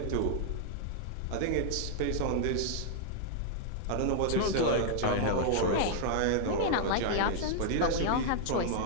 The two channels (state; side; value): different; both; correlation -0.01